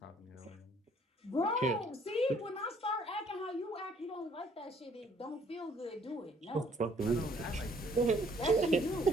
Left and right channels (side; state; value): both; normal; correlation 0.62